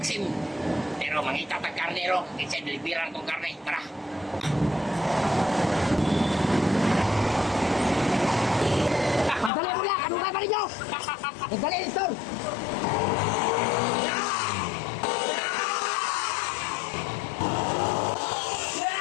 Pero mangita tag karne ro. Kasi deliveran kong karne. Tara. Pagdali mo lang, ano ka pa ninyo? Pagdali, Stor!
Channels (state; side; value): drops out; right; at 9.5 s